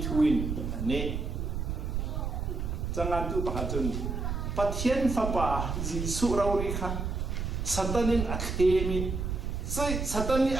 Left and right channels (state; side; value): noise; right; rumble, 2 dB below the sound